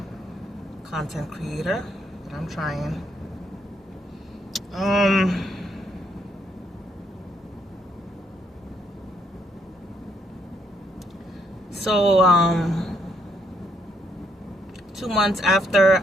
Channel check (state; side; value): normal; both; correlation 0.73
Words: content creator, but I'm trying. So, 2 months after